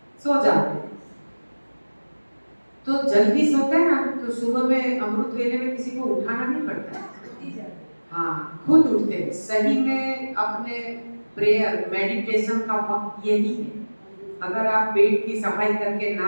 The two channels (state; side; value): inverted; both; correlation -1.00